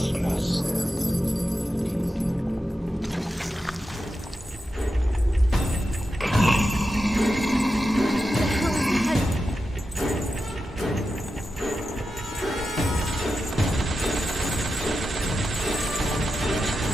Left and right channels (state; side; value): normal; both; correlation 0.90